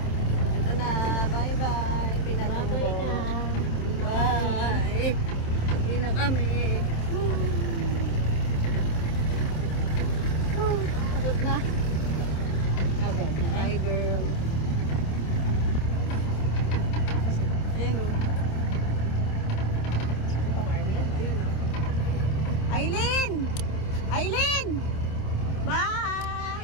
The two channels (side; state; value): right; late; 27 ms